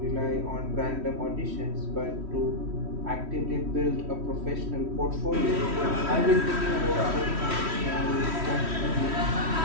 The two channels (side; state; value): left; late; 3.1 ms